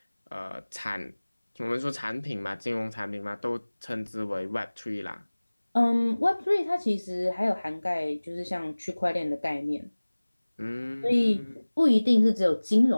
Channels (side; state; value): both; inverted; correlation -1.00